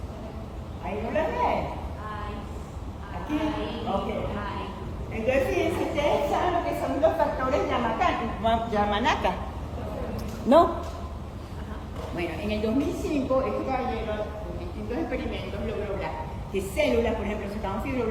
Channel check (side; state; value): both; identical; correlation 1.00